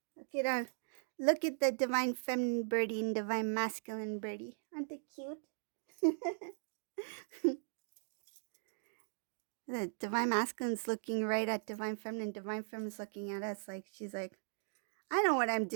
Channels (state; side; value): silent; left; digital silence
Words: Look at the divine feminine birdie and divine masculine birdie. Aren't they cute? The divine masculine's looking right at divine feminine. Divine feminine's looking at us like she's like, I know what I'm